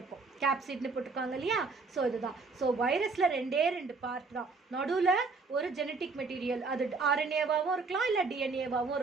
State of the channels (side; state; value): left; quieter; 4.2 dB